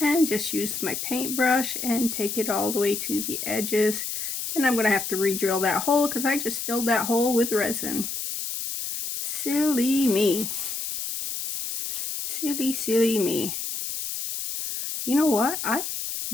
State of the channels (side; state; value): left; noise; hiss, 4 dB below the sound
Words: And just use my paintbrush and take it all the way to the edges. And I'm going to have to re-drill that hole, because I just filled that hole with resin. Silly me. Silly me. You know what? I